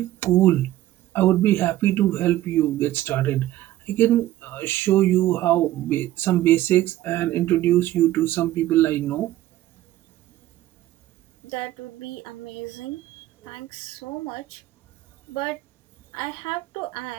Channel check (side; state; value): left; quieter; 14.6 dB